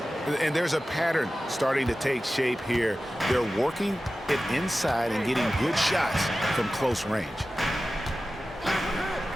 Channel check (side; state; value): both; normal; correlation 0.95